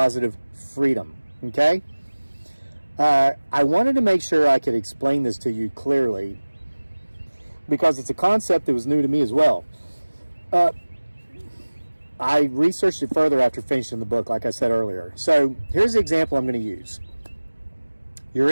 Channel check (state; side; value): inverted; both; correlation -1.00